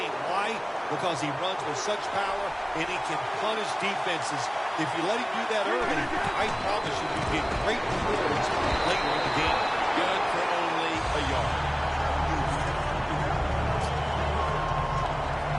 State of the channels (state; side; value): identical; both; correlation 1.00